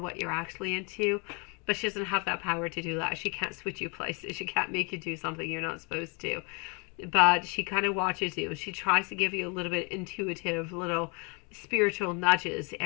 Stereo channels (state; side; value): quieter; right; 33.4 dB